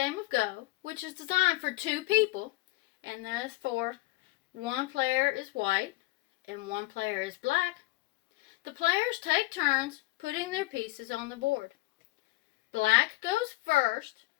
of Go, which is designed for two people, and that is for one player is white and one player is black, the players take turns putting their pieces on the board. Black goes first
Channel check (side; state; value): right; quieter; 20.8 dB